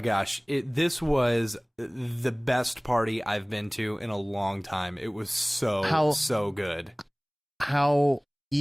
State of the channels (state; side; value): identical; both; correlation 1.00